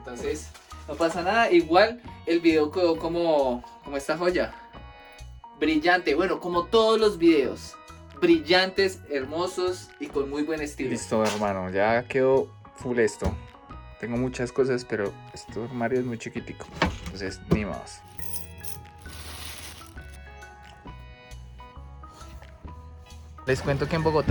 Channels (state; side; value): identical; both; correlation 1.00